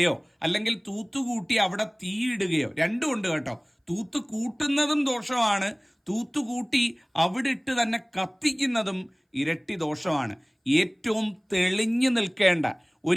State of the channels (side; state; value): both; identical; correlation 1.00